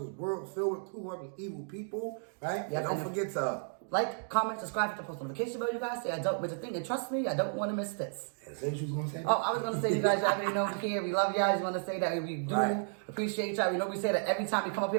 filled with cruel, corrupt, and evil people, right? Yes, and don't forget to like, comment, subscribe, hit the post notification bell, you guys. Say I don't miss a thing, and trust me, I don't want to miss this. Is that what you was going to say? Oh, I was going to say, you guys already know we're here. We love y'all. I just want to say that we do appreciate y'all. We know we say that every time we come up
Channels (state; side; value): silent; left; digital silence